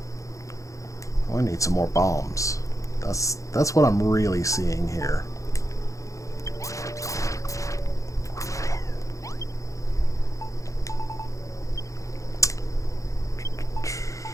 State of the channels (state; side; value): late; right; 0.15 ms